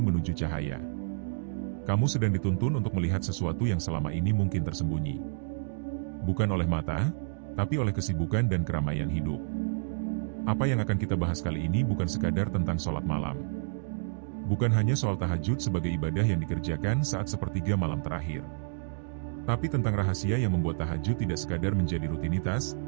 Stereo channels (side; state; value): left; silent; digital silence